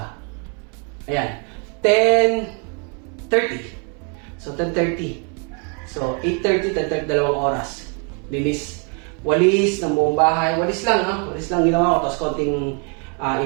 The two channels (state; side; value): quieter; left; 37.4 dB